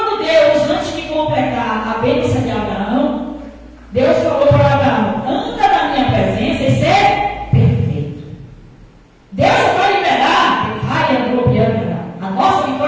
Deus, antes de completar a bênção de Abraão, Deus falou para Abraão: anda na minha presença e ser perfeito. Deus vai liberar a nossa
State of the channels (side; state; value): both; identical; correlation 1.00